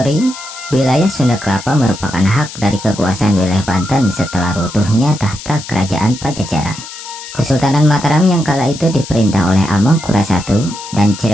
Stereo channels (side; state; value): left; noise; hiss, 13 dB below the sound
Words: wilayah Sunda Kelapa merupakan hak dari kekuasaan wilayah Banten setelah runtuhnya tahta kerajaan Pajajaran. Kesultanan Mataram yang kala itu diperintah oleh Amangkurat I dan